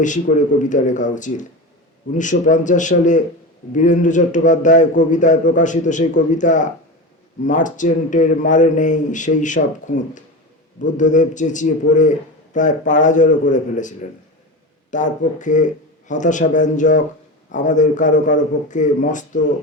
বেশি করে কবিতা লেখা উচিত। 1950 সালে বীরেন্দ্র চট্টোপাধ্যায় কবিতায় প্রকাশিত সেই কবিতা মার্চেন্টের মারে নেই সেই সব খুঁত, বুদ্ধদেব চেঁচিয়ে পড়ে প্রায় পাড়াজড়ো করে ফেলেছিলেন। তার পক্ষে হতাশাব্যঞ্জক, আমাদের কারো কারো পক্ষে মস্ত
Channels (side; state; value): both; normal; correlation 0.24